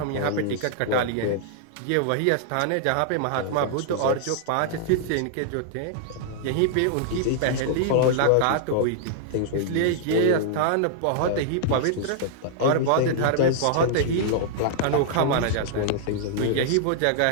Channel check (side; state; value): both; different; correlation -0.01